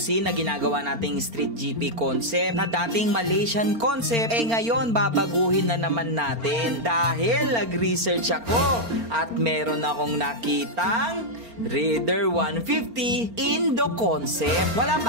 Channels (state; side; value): late; left; 4.4 ms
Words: na ginagawa nating Street GP concept na dating Malaysian concept, ngayon babaguhin na naman natin dahil nag-research ako at meron akong nakitang Raider 150 Indo concept. Wala